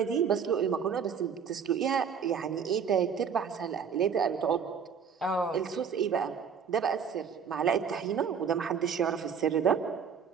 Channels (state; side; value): quieter; left; 6.9 dB